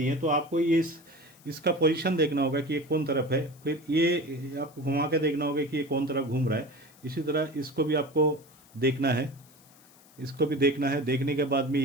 तो आपको ये इसका पोजीशन देखना होगा कि ये कौन तरफ है, फिर ये आपको घुमा के देखना होगा कि ये कौन तरफ घूम रहा है। इसी तरह इसको भी आपको देखना है, इसको भी देखना है। देखने के बाद में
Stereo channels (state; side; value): noise; left; hiss, 26 dB below the sound